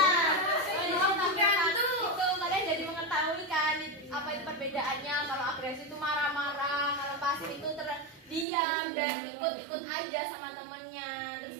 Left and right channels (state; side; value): drops out; left; at 8.5 s